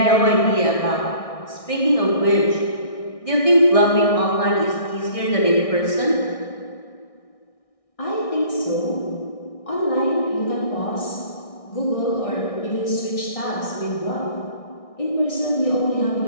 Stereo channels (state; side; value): late; right; 1.6 ms